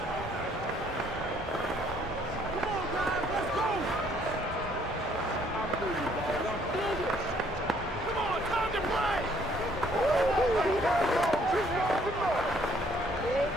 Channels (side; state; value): both; normal; correlation 0.64